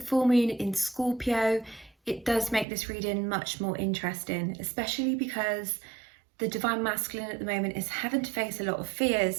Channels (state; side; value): drops out; left; at 2.7 s